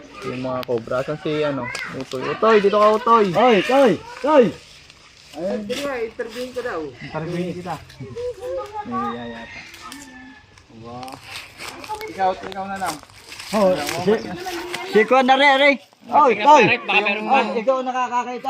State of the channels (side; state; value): both; identical; correlation 1.00